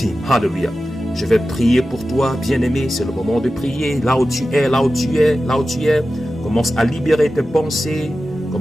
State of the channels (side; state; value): both; normal; correlation 0.94